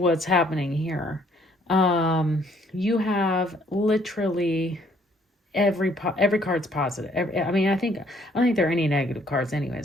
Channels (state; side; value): normal; both; correlation 0.64